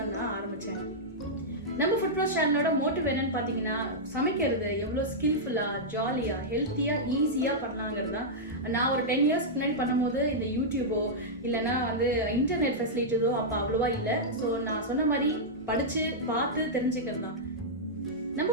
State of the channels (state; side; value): normal; both; correlation -0.09